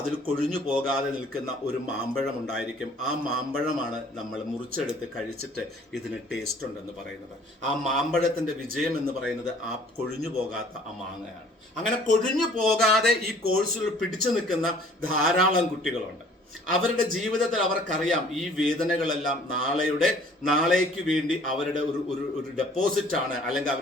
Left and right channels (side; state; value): both; normal; correlation 0.54